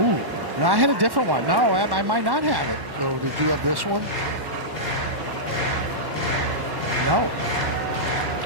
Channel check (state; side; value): late; left; 1.1 ms